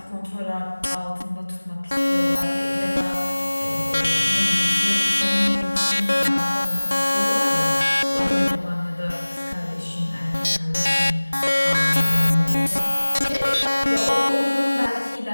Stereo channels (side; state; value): both; inverted; correlation -1.00